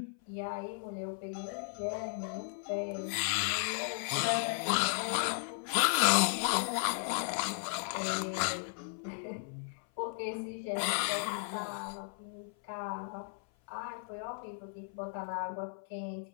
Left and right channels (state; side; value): silent; right; 54 dB below the other